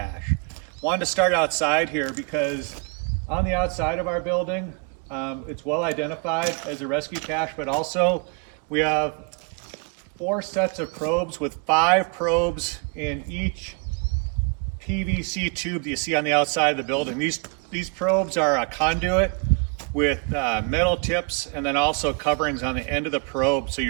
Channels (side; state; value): left; quieter; 35.4 dB